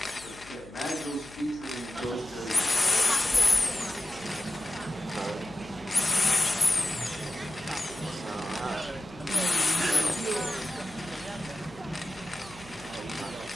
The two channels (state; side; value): noise; left; hum, 21 dB below the sound